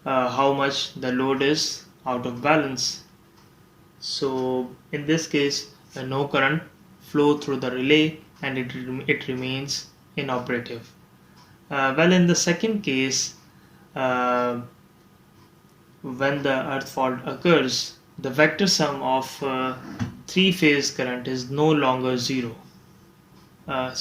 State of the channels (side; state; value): both; identical; correlation 1.00